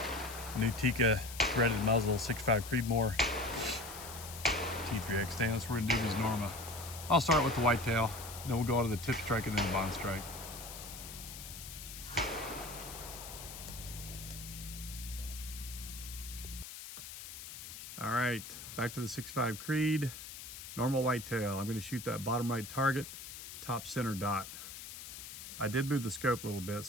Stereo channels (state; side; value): noise; left; hiss, 11 dB below the sound